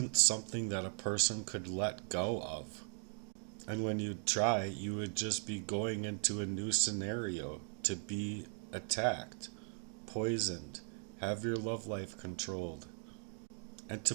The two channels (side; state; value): left; silent; 52 dB below the other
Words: something that a person could let go of. And when you try, you would just be going into a new scenario to be attacked, poisoned, have your love life controlled. And to